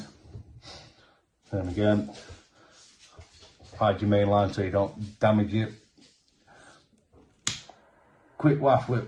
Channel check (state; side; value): identical; both; correlation 1.00